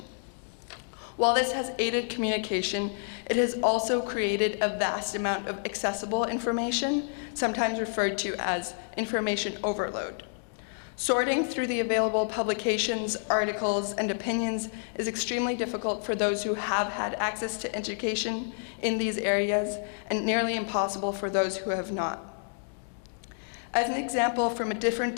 While this has aided communication, it has also created a vast amount of accessible information, sometimes referred to as information overload. Sorting through the available publications, articles, and opinions is extremely difficult for those who have had access to education in these areas, and nearly impossible for those who have not. As an example from a different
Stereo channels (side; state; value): right; silent; digital silence